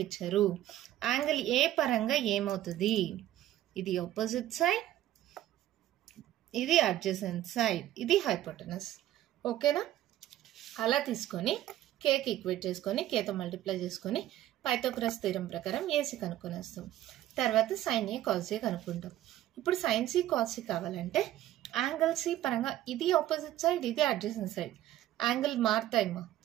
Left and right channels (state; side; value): quieter; left; 13.5 dB